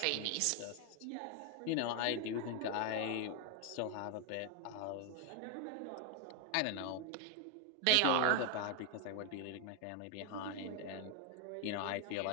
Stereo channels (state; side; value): different; both; correlation 0.01